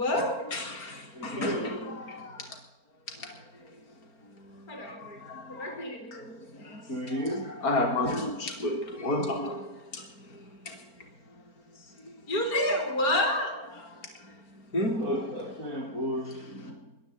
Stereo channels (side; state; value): right; late; 4.4 ms